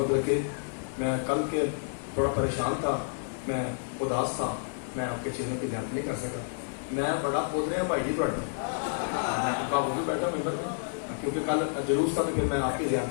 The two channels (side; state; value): right; silent; digital silence